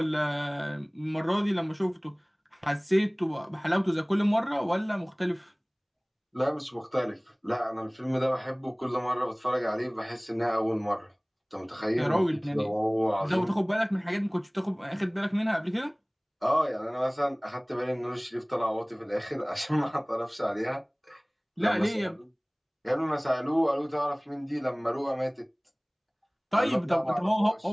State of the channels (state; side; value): identical; both; correlation 1.00